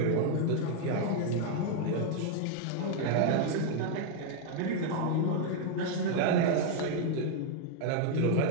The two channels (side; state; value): both; different; correlation 0.00